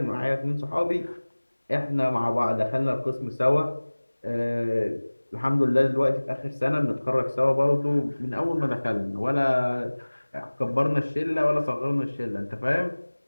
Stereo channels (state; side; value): inverted; both; correlation -1.00